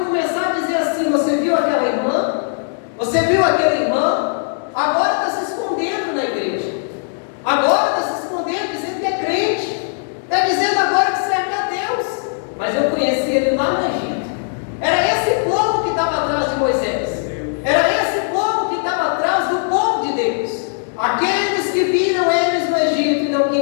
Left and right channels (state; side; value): silent; right; digital silence